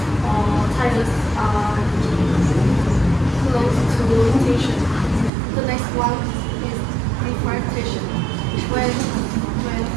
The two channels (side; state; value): left; drops out; at 5.3 s